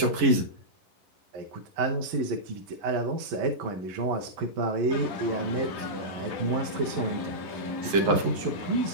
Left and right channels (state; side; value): late; left; 11 ms